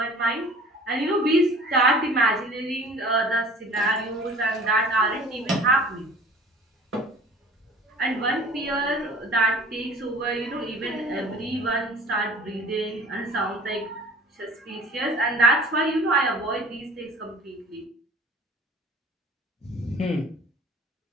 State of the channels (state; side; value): normal; both; correlation 0.47